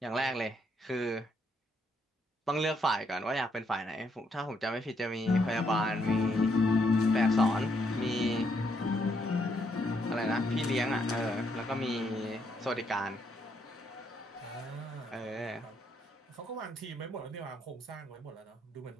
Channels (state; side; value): normal; both; correlation 0.74